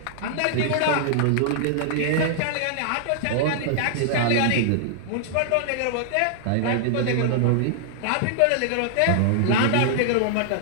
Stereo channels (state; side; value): different; both; correlation -0.01